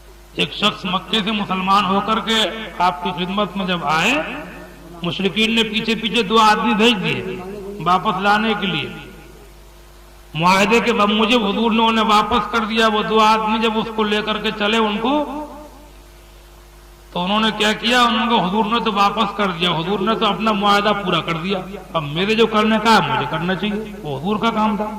ایک شخص مکے سے مسلمان ہو کر کے آپ کی خدمت میں جب آئے، مشرکین نے پیچھے پیچھے 2 آدمی بھیج دیے واپس لانے کے لیے، معاہدے کے بموجب حضور نے انہیں واپس کر دیا۔ وہ 2 آدمی جب اس کو لے کر کے چلے ان کو، تو انہوں نے کیا کیا، انہوں کو حضور نے تو واپس کر دیا، حضور نے تو اپنا معاہدہ پورا کر دیا، اب میرے جو کرنے کا ہے مجھے کرنا چاہیے، وہ حضور کا کام تھا۔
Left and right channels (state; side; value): identical; both; correlation 1.00